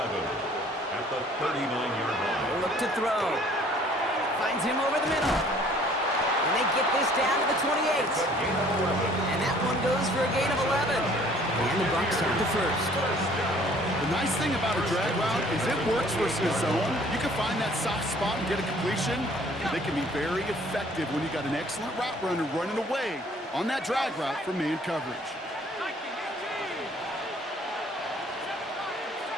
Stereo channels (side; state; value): both; normal; correlation 0.56